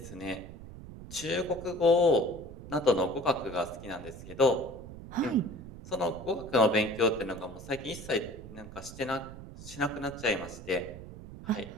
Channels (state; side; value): noise; right; rumble, 13 dB below the sound